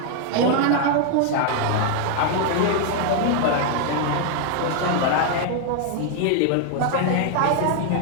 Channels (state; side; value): different; both; correlation 0.00